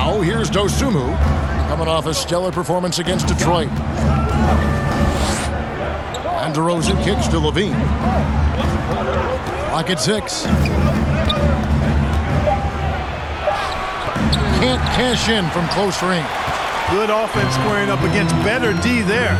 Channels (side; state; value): both; identical; correlation 1.00